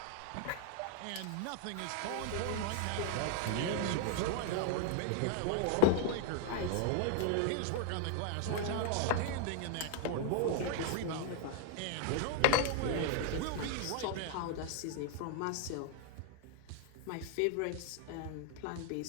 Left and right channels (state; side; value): different; both; correlation 0.00